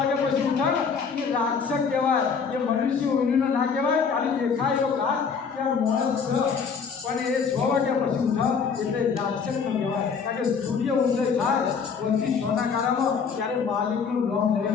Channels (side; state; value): right; quieter; 5.9 dB